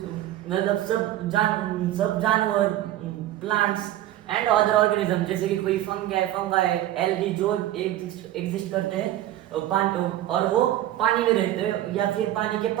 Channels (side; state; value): left; quieter; 13.4 dB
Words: मतलब सब जानवर, प्लांट्स एंड अदर ऑर्गेनिज्म, जैसे कि कोई फंगाई, एल्गी जो एग्जिस्ट करते हैं पानी, और वो पानी में रहते हैं या फिर पानी के